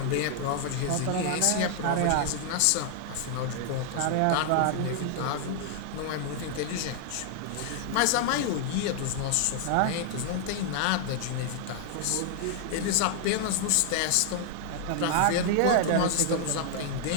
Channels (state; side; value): different; both; correlation 0.00